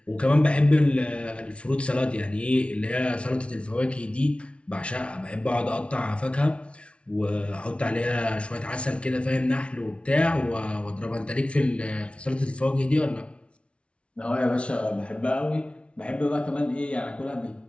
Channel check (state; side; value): late; right; 0.060 ms